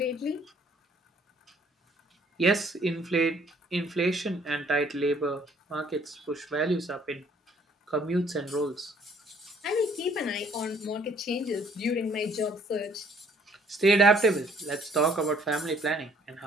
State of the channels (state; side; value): normal; both; correlation 0.61